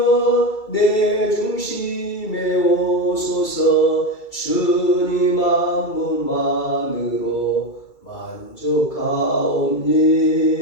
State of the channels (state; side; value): late; right; 2.3 ms